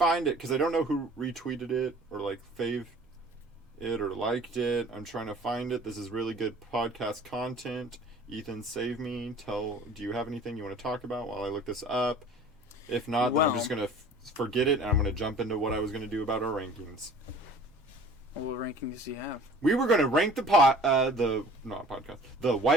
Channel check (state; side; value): normal; both; correlation 0.47